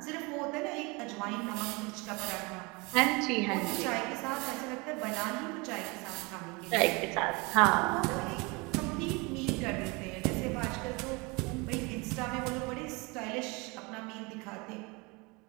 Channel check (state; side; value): quieter; left; 27.1 dB